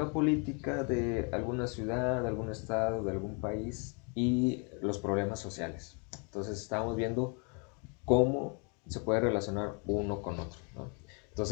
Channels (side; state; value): right; quieter; 35.8 dB